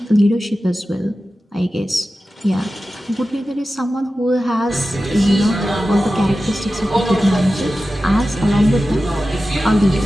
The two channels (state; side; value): normal; both; correlation 0.94